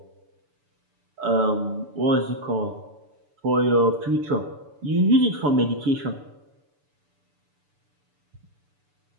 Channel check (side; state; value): left; late; 6.9 ms